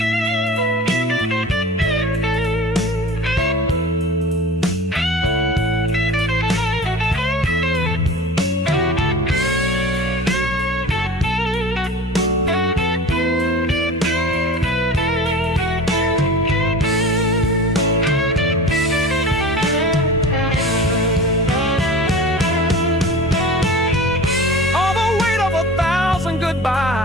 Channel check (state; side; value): normal; both; correlation 0.37